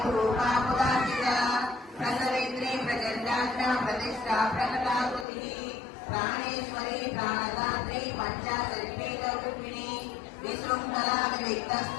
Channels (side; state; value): right; drops out; at 5.2 s